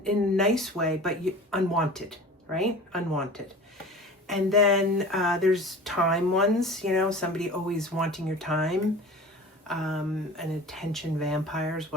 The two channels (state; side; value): normal; both; correlation 0.39